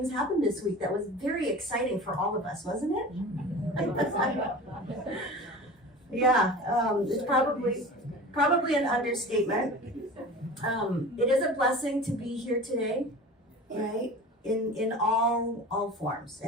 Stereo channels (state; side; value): normal; both; correlation 0.36